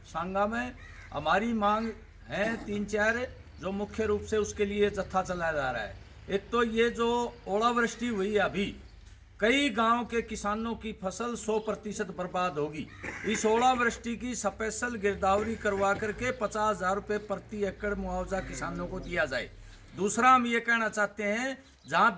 सांगा में। हमारी मांग है 3-4 जो मुख्य रूप से उसके लिए जत्था चलाया जा रहा है। एक तो ये जो ओलावृष्टि हुई है, अभी कई गांव के किसानों की फसल 100% बर्बाद होगी। इस ओलावृष्टि की स्पेशल गिरदावरी करवा करके 50,000 रुपये प्रति एकड़ मुआवजा किसानों को दिया जाए। दूसरा, हम ये कहना चाहते हैं, जहां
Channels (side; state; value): both; identical; correlation 1.00